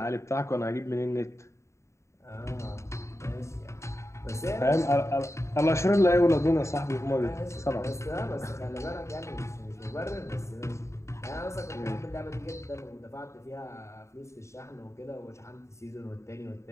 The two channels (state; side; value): late; right; 0.14 ms